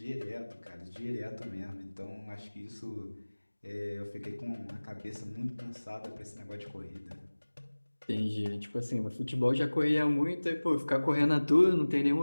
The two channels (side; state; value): both; inverted; correlation -1.00